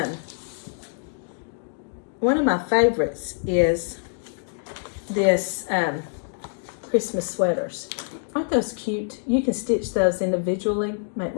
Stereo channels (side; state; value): right; silent; digital silence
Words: my favorites is this Christmas sweaters. aren't those cute? You can stitch those individually, make